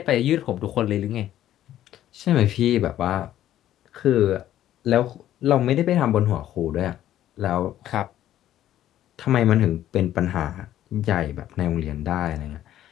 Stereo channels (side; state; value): right; quieter; 12.4 dB